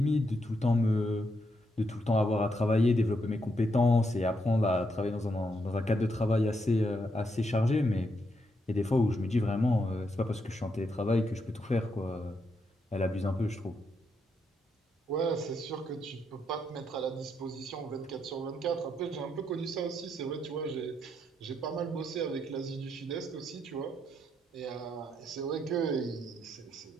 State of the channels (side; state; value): both; normal; correlation 0.79